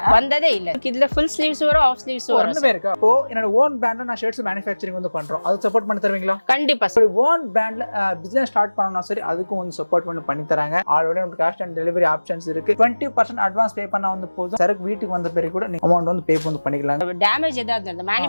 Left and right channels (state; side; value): inverted; both; correlation -1.00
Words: வந்ததே இல்ல. இதுல ஃபுல் ஸ்லீவ்ஸ் வரும், ஆஃப் ஸ்லீவ்ஸ் வரும். ரெண்டுமே இருக்கு. அப்போ என்னோட ஓன் பிராண்ட்ல நான் ஷர்ட்ஸ் மேனுஃபேக்சரிங் வந்து பண்றோம். அது சப்போர்ட் பண்ணி தருவீங்களா? கண்டிப்பா சார். ஓன் பிராண்ட்ல பிசினஸ் ஸ்டார்ட் பண்ணனும்னா சரி அதுக்கும் வந்து சப்போர்ட் பண்ணி தராங்க. ஆல்ரெடி நமக்கு கேஷ் ஆன் டெலிவரி ஆப்ஷன்ஸ் இருக்கு. 20% அட்வான்ஸ் பே பண்ணா வந்து போதும். சரக்கு வீட்டுக்கு வந்த பிறகு கூட நீங்க அமௌண்ட் வந்து பே வந்து பண்ணிக்கலாம். டேமேஜ் ஏதாவது இருந்தா